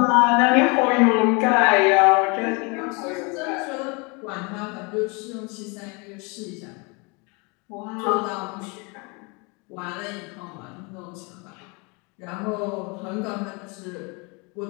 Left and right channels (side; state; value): right; quieter; 30.3 dB